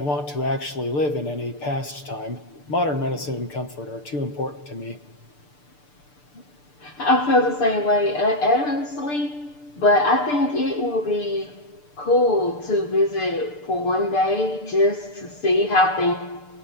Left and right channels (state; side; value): late; right; 6.8 ms